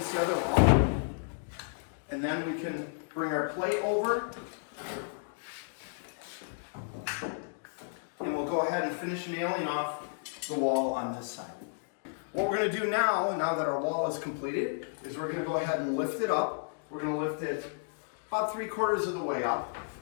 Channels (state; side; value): silent; right; digital silence